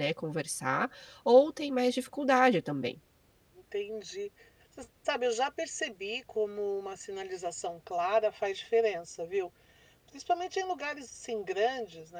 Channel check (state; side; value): identical; both; correlation 1.00